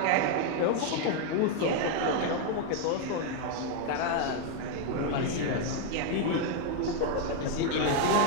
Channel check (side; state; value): both; different; correlation 0.01